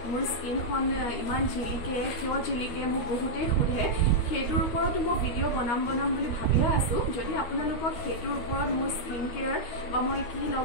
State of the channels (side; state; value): right; late; 13 ms